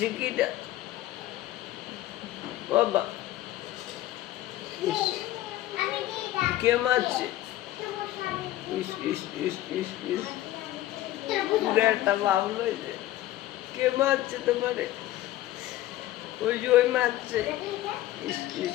কিটা? বাবা, ইস, কে মারছে? ইস ইস ইস ইস ইস, পুরো একটা বাবল হয়েছে। কে মারছে তোমারে? ওই যে ওই মারছে। ইস ইস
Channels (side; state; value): right; quieter; 14.9 dB